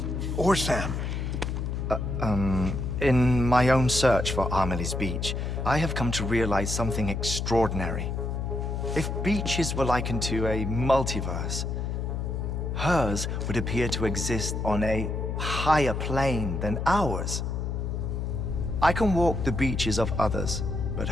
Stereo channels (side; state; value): left; noise; hum, 2 dB below the sound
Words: or Sam. In my own search for Amelie's Beach, I have come to realize something extraordinary. If beaches were likened to a multiverse, hers would appear to exist on a higher plane than ours. I can walk the beaches of others, but